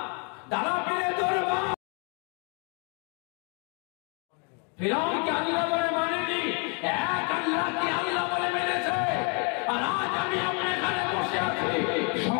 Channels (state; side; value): quieter; right; 34.3 dB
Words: দাদা পীরের দরবার ফিরাউন কি আল্লাহ বলে মানেনি, এক আল্লাহ কি আল্লাহ বলে মেনেছে। আর আজ আমি আপনার এখানে বসে আছি,